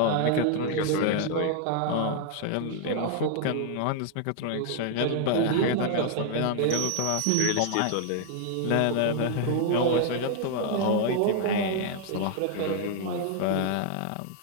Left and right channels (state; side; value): different; both; correlation 0.00